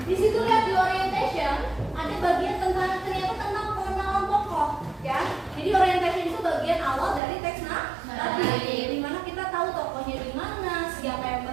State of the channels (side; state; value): left; drops out; at 7.2 s